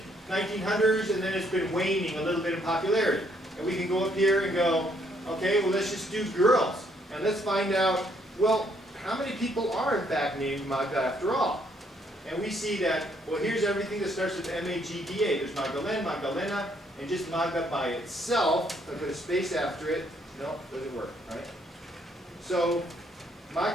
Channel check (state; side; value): normal; both; correlation 0.69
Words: and then it's been waning a little bit in popularity. And we can go up here and go, okay, well, let's just do girls. And let's find out, well, how many people are in fact named Magda after all? And we see that, well, here's everything that starts with M-A-G-D-A. There's Magdalene, Magdalena, and just Magda by itself. If I put a space after it, no, doesn't work, right? So